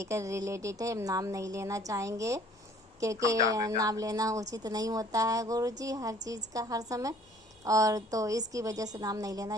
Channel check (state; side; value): normal; both; correlation 0.55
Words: रिलेटेड है। हम नाम नहीं लेना चाहेंगे, क्योंकि हम जान नाम लेना उचित नहीं होता है गुरुजी हर चीज़ का हर समय, और तो इसकी वजह से नाम नहीं